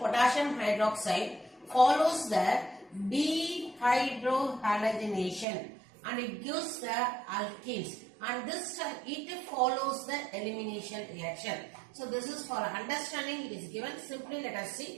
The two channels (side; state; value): left; drops out; at 5.5 s